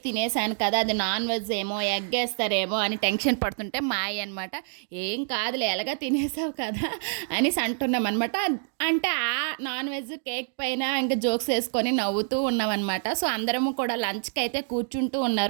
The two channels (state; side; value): silent; left; digital silence